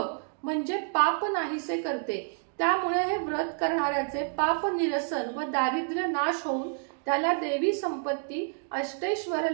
म्हणजे पाप नाहीसे करते। त्यामुळे हे व्रत करणाऱ्याचे पाप निरसन व दारिद्र्य नाश होऊन त्याला देवी संपत्ती, अष्टैश्वर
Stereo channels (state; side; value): silent; left; 59 dB below the other